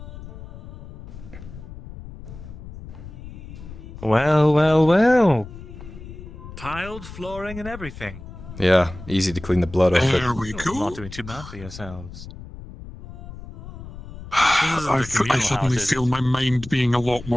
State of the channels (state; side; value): noise; left; rumble, 14 dB below the sound